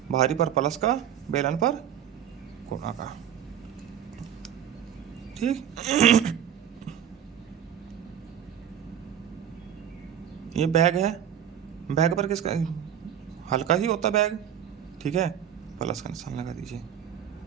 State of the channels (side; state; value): left; quieter; 9.5 dB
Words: भारी पर प्लस का, बेलन पर गुणा का। ठीक, ये बैग है, बैग पर किसका? हल्का ही होता बैग। ठीक है, प्लस का निशान लगा दीजिए।